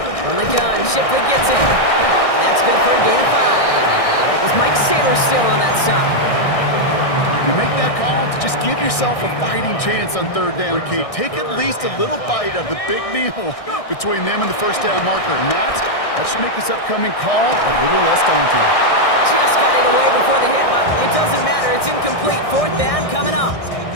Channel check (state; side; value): late; right; 1.6 ms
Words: From the gun, Shipley gets it. And that's good for a gain of 5. It was Mike Saylor still on that stop. You make that call to just give yourself a fighting chance on third down, Kate. Take at least a little bite of the big meal between them and the first down marker. And that should make this upcoming call a little less daunting. Just got it away before the hit, but it doesn't matter. It's incomplete. Fourth down coming up.